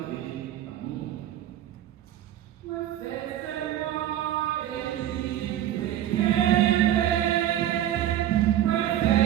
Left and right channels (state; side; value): quieter; left; 12.0 dB